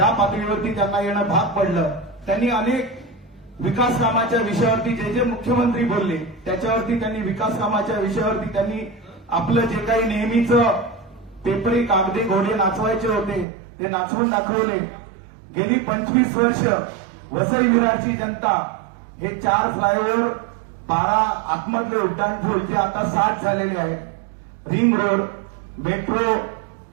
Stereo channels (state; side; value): drops out; left; at 13.5 s